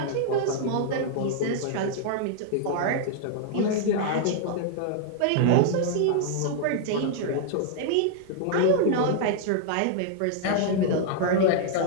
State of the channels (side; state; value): both; different; correlation -0.01